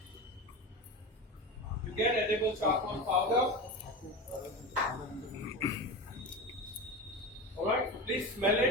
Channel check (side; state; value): both; normal; correlation 0.25